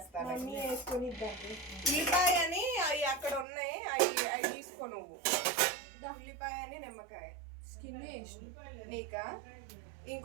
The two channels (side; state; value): left; drops out; at 3.5 s